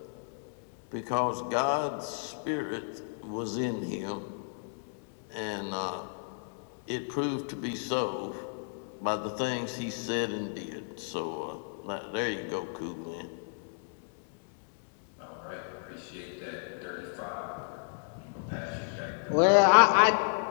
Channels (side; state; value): right; silent; digital silence